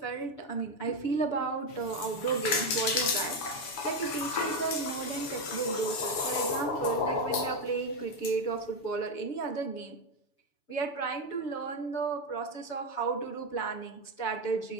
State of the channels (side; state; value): right; late; 6.9 ms